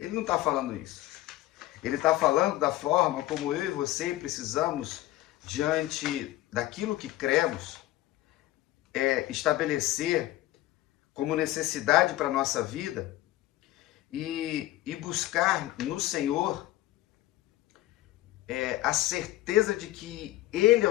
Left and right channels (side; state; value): right; quieter; 16.3 dB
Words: não está falando isso. Ele está falando da forma como eu e você precisamos, diante daquilo que cremos, estabelecer como necessidade para a nossa vida e buscar no Senhor a certeza de que Ele é